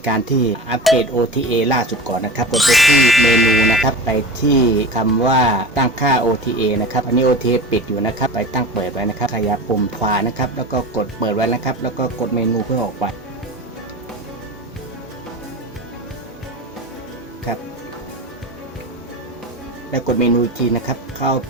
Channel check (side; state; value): both; normal; correlation 0.31